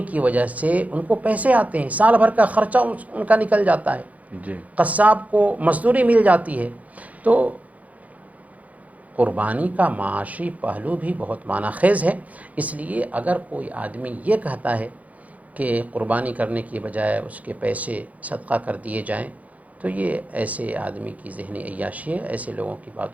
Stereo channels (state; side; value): late; left; 0.071 ms